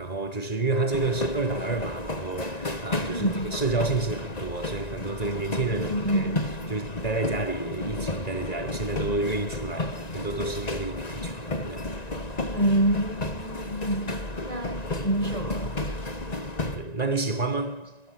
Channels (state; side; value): late; right; 1.9 ms